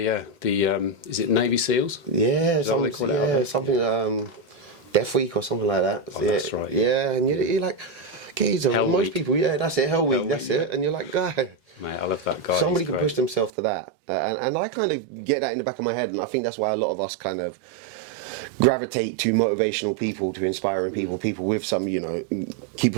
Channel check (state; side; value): drops out; left; at 13.5 s